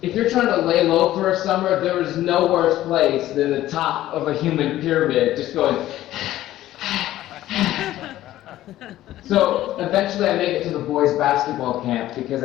if you're trying to lay low for a summer, there is no worse place than the top of a human pyramid, just going. So eventually I make it to the boys' basketball camp because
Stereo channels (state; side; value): quieter; right; 14.3 dB